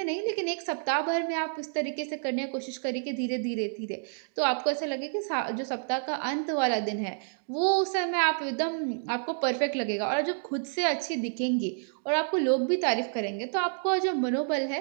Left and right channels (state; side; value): silent; left; digital silence